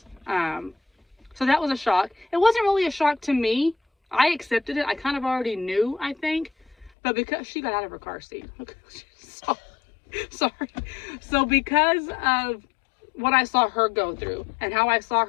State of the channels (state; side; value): drops out; right; at 6.9 s